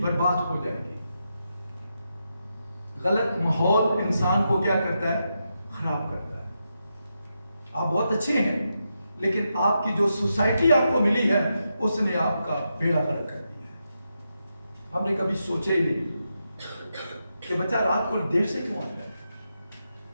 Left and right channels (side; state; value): both; inverted; correlation -0.85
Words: برباد ہو جائے گی. غلط ماحول انسان کو کیا کرتا ہے؟ خراب کرتا ہے. آپ بہت اچھے ہیں لیکن آپ کی جو سوسائٹی آپ کو ملی ہے اس نے آپ کا بیڑا غرق کر دیا ہے. ہم نے کبھی سوچے ہی نہیں کہ بچہ رات کو دیر سے کیوں آتا ہے،